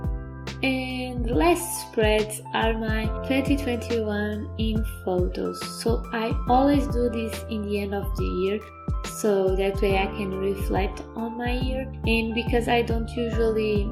And the last spreads are my 2021 in photos. So I always do this in the end of the year, so that way I can reflect on my year. And because I don't usually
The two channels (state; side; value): identical; both; correlation 1.00